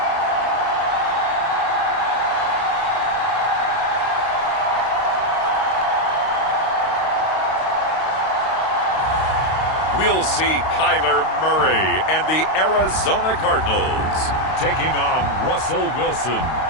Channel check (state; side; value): late; right; 32 ms